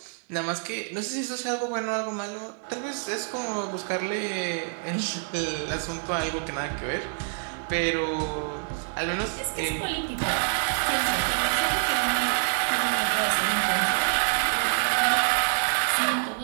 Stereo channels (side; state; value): left; silent; 60 dB below the other